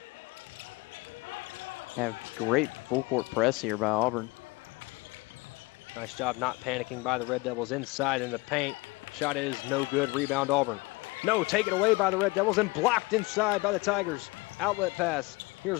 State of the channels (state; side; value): quieter; right; 24.3 dB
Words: Have great full court press here by Auburn. Nice job not panicking by the Red Devils inside in the paint. Shot is no good. Rebound Auburn. No, taken away by the Red Devils and blocked inside by the Tigers. Outlet pass. Here's